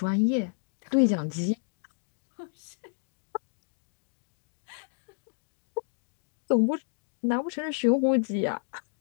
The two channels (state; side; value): silent; right; digital silence